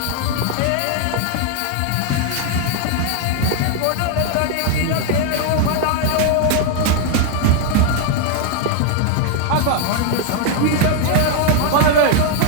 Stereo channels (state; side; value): different; both; correlation 0.00